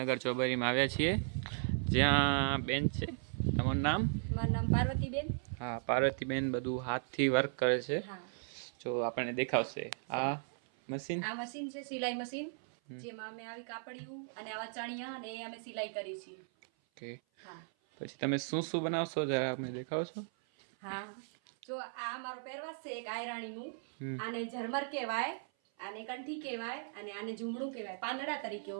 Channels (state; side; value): silent; left; 53 dB below the other